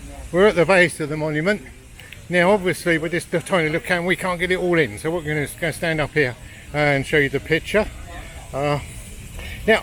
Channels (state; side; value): identical; both; correlation 1.00